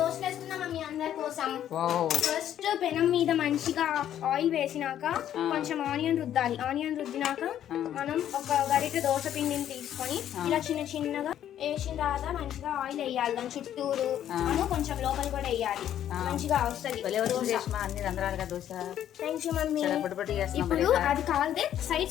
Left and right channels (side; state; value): right; quieter; 10.8 dB